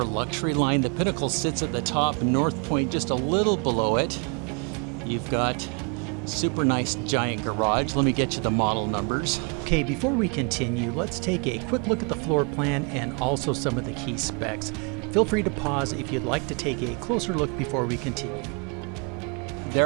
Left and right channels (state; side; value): quieter; left; 34.7 dB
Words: luxury line. The Pinnacle sits at the top, North Point just a little below it. You've got super nice giant garage. Let me get you the model numbers. Okay, before we continue, let's take a quick look at the floor plan and also some of the key specs. Feel free to pause if you'd like to take a closer look before we continue.